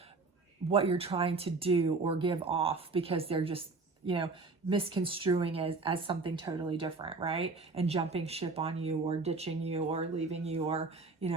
what you're trying to do or give off, because they're just, you know, misconstruing as something totally different, right? And jumping ship on you or ditching you or leaving you or, you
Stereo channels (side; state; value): left; quieter; 3.9 dB